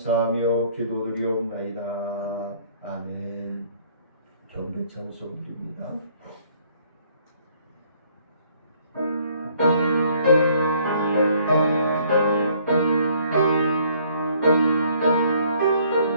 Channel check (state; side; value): inverted; both; correlation -0.62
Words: 기도드리옵나이다. 아멘. 경배 찬송드립니다.